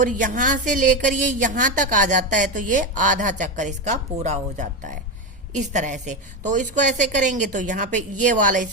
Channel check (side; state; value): both; normal; correlation 0.14